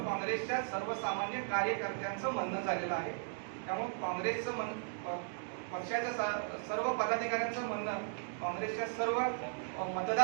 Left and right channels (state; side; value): silent; left; digital silence